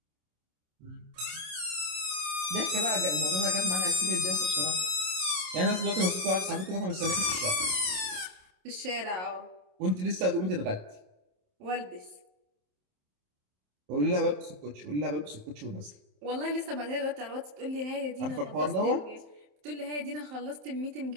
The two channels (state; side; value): late; left; 27 ms